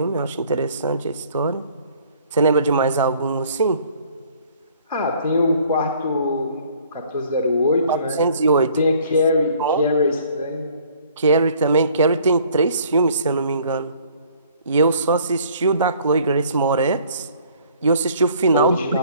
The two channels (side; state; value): both; inverted; correlation -0.56